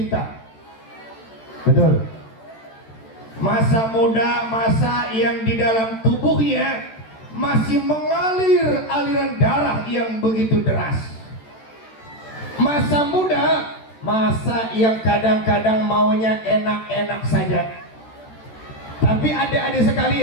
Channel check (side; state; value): right; late; 13 ms